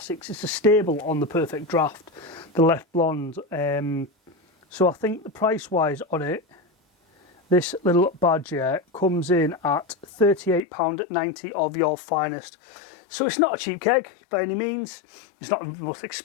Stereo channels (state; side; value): drops out; right; at 10.6 s